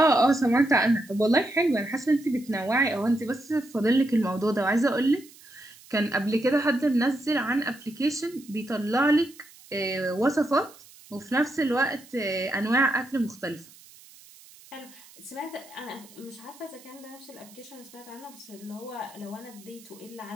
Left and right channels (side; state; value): right; noise; hiss, 23 dB below the sound